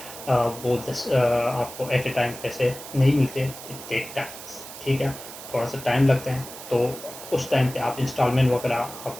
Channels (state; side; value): noise; right; hiss, 13 dB below the sound